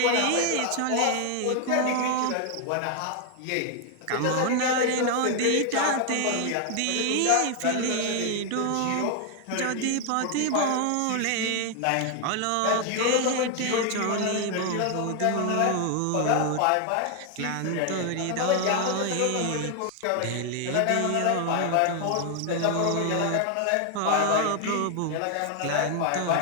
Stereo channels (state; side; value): different; both; correlation 0.00